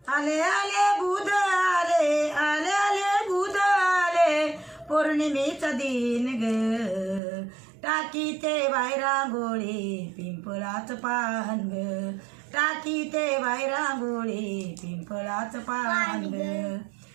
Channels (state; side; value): drops out; left; at 7.2 s